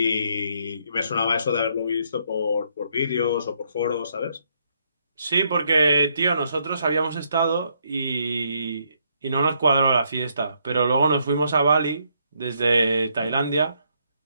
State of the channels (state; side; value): inverted; both; correlation -0.73